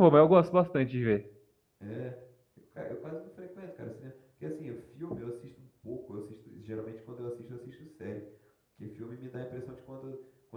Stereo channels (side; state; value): both; identical; correlation 1.00